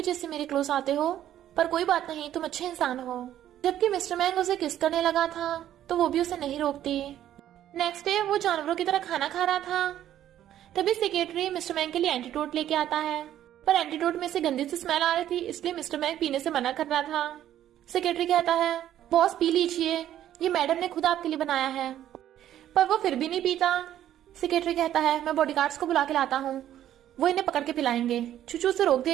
से मेरे क्लोज आते हो, पर कोई बात नहीं, तुम अच्छे इंसान हो। जबकि मिस्टर मैंग उसे किस करने लगा था तो वो भी उसे नहीं रोकती। नेक्स्ट डे वो जानवरों की तरह खाना खा रहा था। तभी सेक्रेटरी मिस्टर मैंग के लिए एंटीडोट लेके आता है, पर एंटीडोट में से गंदी सी स्मेल आ रही थी, इसलिए मिस्टर मैंग पीने से मना कर रहा था। सेक्रेटरी कहता है बॉस पी लीजिए, ये मैडम ने खुद आपके लिए बनाया है, पर वो फिर भी नहीं पीता। सेक्रेटरी कहता है मैं बॉडीगार्ड्स को बुला के लाता हूँ, वो इन्हें पकड़ के पिलाएंगे। चूचू उसे रोक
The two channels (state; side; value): quieter; left; 11.7 dB